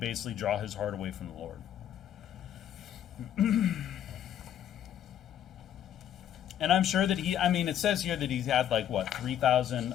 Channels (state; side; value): quieter; right; 10.4 dB